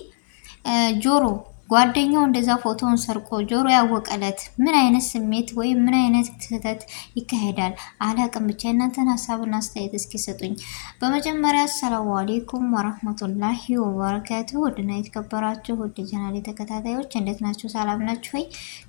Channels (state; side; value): silent; right; 64 dB below the other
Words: ጆሮ ጓደኛው እንደዛ ፎቶውን ሰርቆ ጆሮ ያወቀለት ምን አይነት ስሜት ወይም ምን አይነት ስህተት ይካሄዳል አላቅም። ብቻ እናንተን ሀሳብና አስተያየት እስኪ ሰጡኝ። በመጀመሪያ አሰላሙ አሌይኩም ወራህመቱላሂ ወበረካቱ። ውድና የተከበራችሁ ውድ ቻናሌ ተከታታዮች እንዴት ናችሁ? ሰላም ናችሁ ወይ?